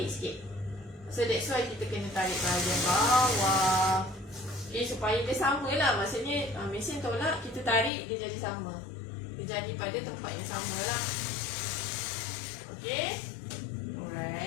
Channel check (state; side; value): drops out; right; at 7.9 s